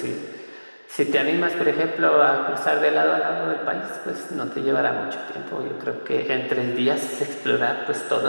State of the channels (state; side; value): inverted; both; correlation -1.00